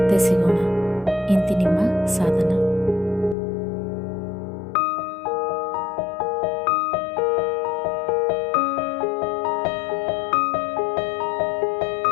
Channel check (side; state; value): right; drops out; at 3.4 s